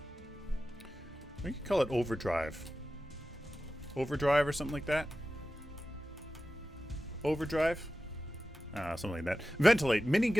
we could call it overdrive. Overdrive or something like that. Overdrive? Something like that. Ventilate.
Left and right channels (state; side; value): normal; both; correlation 0.94